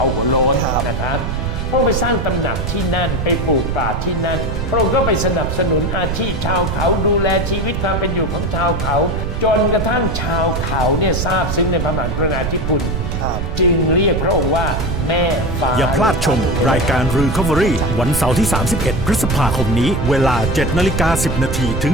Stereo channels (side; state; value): right; noise; rumble, 3 dB below the sound